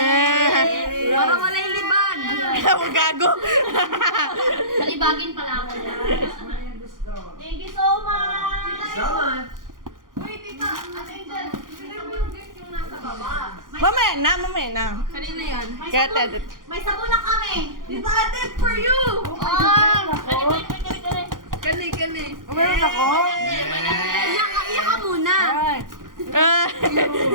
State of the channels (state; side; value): late; left; 0.90 ms